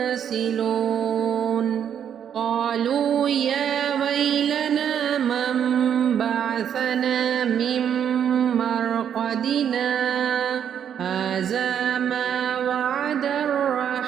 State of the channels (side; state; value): left; quieter; 8.8 dB